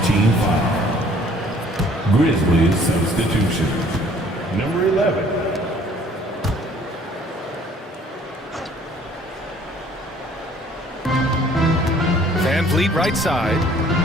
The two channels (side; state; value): both; normal; correlation 0.56